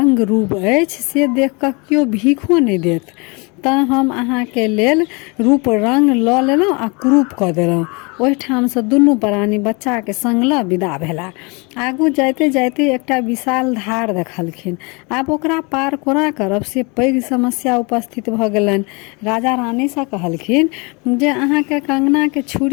रूप अछि से देख कऽ कियो भीखो नहीं देत, तऽ हम अहाँ के लेल रूप रंग लऽ लेलहुँ आ क्रूप कऽ देलहुँ। ओहिठाम से दुनू प्राणी बच्चा के संग लऽ विदा भेला। आगू जाइते जाइते एकटा विशाल धार देखलखिन। आब ओकरा पार कोना करब से पैघ समस्या उपस्थित भऽ गेलनि। राजा रानी से कहलखिन जे अहाँ के कंगना के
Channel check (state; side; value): quieter; right; 29.7 dB